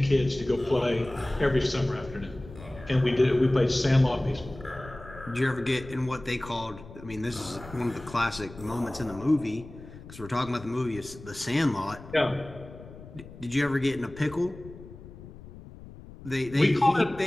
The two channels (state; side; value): noise; left; rumble, 17 dB below the sound